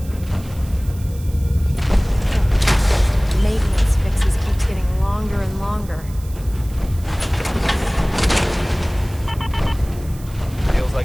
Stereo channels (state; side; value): noise; right; hiss, 21 dB below the sound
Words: Maintenance fixes keeps getting longer and longer. Feels